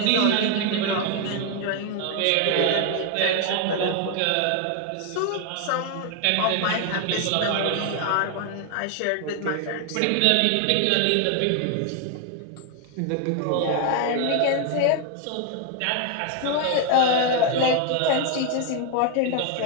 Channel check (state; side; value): different; both; correlation 0.01